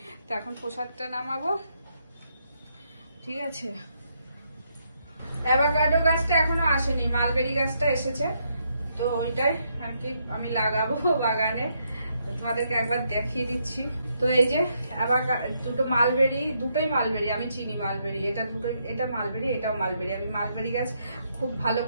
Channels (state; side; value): inverted; both; correlation -0.76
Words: তো এখন প্রসাদটা নামাবো, ঠিক আছে। অ্যাভোকাডো গাছটা এখনো আসেনি, মালবেরি গাছটা এসেছে, তো ওইটাই আর কি আমি লাগাবো বাগানে, তোমাদেরকে একবার দেখিয়ে দিচ্ছি। তো এই যে দুটো মালবেরি, দুটোই মালবেরি, আমি চিনি মালবেরি, এটা দুটোই, এটা মালবেরি এটাও মালবেরি, আমি মালবেরি গাছ খুব ভালো